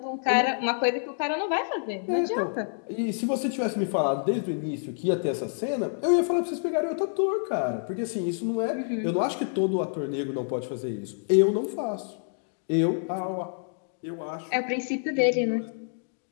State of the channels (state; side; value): silent; right; digital silence